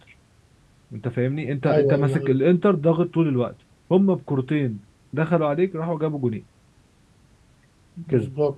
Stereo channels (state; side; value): identical; both; correlation 1.00